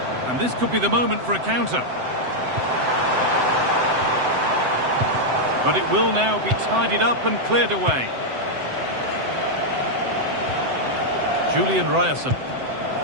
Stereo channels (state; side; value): late; left; 7.8 ms